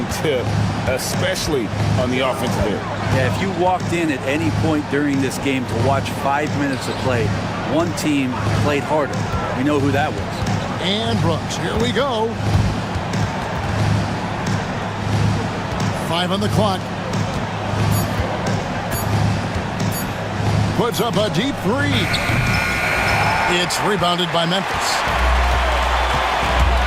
tip, especially on the offensive end. Yeah, if you walked in at any point during this game to watch 5 minutes of play, one team played harder. We know who that was. And Brooks, here we go. 5 on the clock. Puts up a deep three. It's rebounded by Memphis.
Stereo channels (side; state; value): both; identical; correlation 1.00